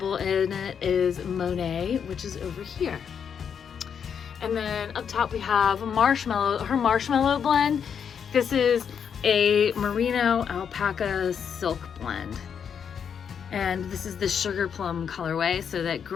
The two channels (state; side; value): quieter; right; 7.4 dB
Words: in it is Monet, which is over here. And then up top we have Marshmallow, her Marshmallow blend. This is a Merino Alpaca silk blend. And this is the Sugar Plum colorway, so that